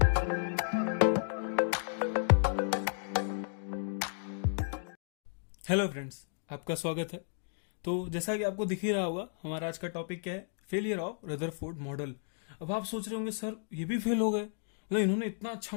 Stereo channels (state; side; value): silent; right; digital silence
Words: friends, आपका स्वागत है। तो जैसा कि आपको दिख ही रहा होगा, हमारा आज का टॉपिक क्या है? Failure of Rutherford model. अब आप सोच रहे होंगे सर ये भी फेल हो गए, मतलब इन्होंने इतना